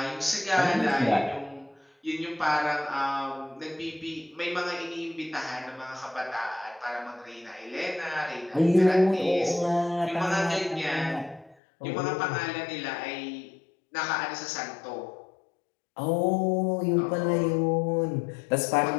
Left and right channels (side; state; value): right; drops out; at 11.6 s